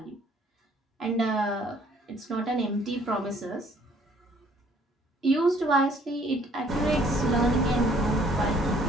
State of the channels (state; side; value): normal; both; correlation 0.61